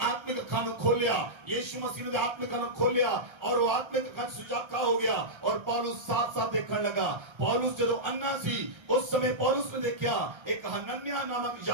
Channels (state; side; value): late; left; 1.3 ms